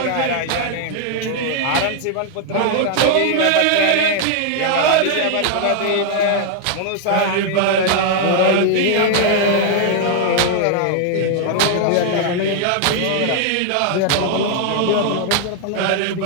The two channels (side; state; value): both; different; correlation 0.00